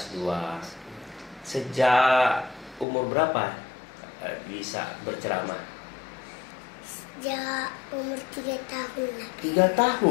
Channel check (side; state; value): right; drops out; at 2.9 s